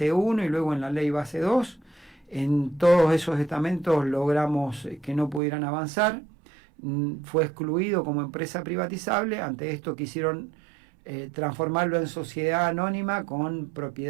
1 y luego en la ley base 2. En todos esos estamentos logramos que no pudieran avanzar. Fue excluido como empresa privatizable. Ante esto quisieron transformarlo en sociedad anónima con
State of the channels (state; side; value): drops out; left; at 5.4 s